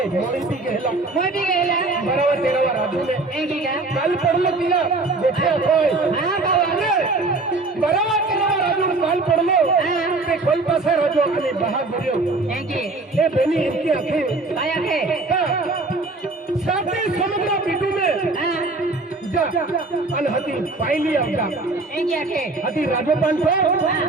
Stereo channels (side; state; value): left; quieter; 3.3 dB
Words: मोरी भी गहला मोय भी गेला 12-13 राजू ने एक ही का काल पडलो तिला गोठ्या खोय हां बाबा 12-13 राजू काल पडलो ते कोलपासा राजू आणि बहा बरियो एक ही हे बेनी इनकी आंखें काय आहे साथे समुद्र पीटू में हां जा अन हती पायली आवता एक ही आखे हती राजोपान छो